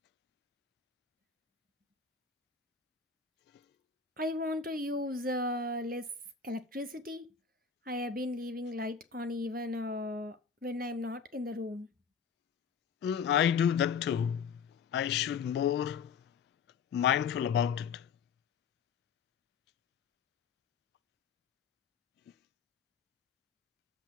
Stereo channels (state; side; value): quieter; right; 6.1 dB